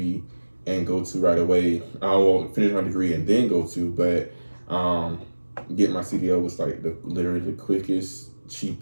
and go to right away. I won't finish my degree and then go to, but getting my CDL was like literally the quickest,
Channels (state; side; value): inverted; both; correlation -1.00